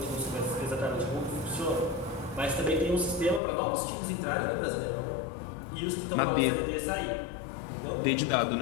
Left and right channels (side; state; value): right; drops out; at 3.4 s